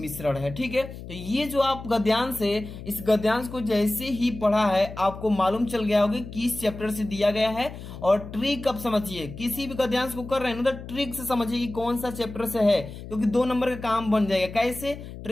है। ठीक है, तो ये जो आप गद्यांश है, इस गद्यांश को जैसे ही पढ़ा है आपको मालूम चल गया होगा किस चैप्टर से दिया गया है। और ट्रिक अब समझिए, किसी भी गद्यांश को कर रहे हैं ना तो ट्रिक से समझिए कि कौन सा चैप्टर से है, क्योंकि 2 नंबर का काम बन जाएगा। कैसे?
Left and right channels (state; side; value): noise; left; hum, 12 dB below the sound